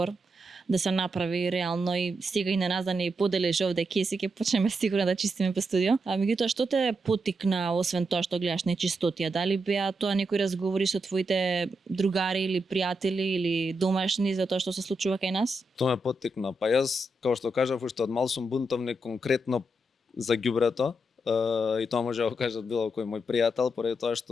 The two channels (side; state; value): both; normal; correlation 0.84